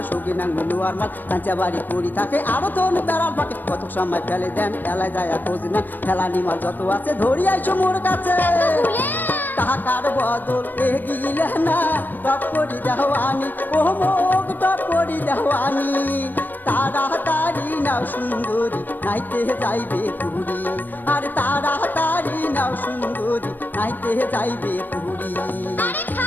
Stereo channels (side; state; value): right; late; 0.090 ms